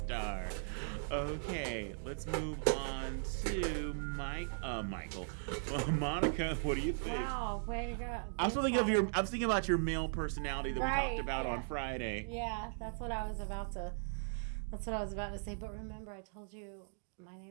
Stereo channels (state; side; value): silent; left; digital silence